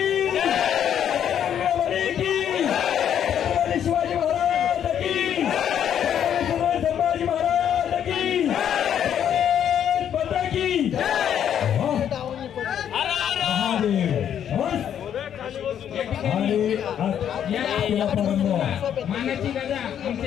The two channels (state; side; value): quieter; right; 9.4 dB